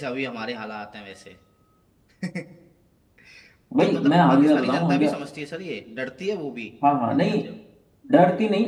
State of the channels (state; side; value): identical; both; correlation 1.00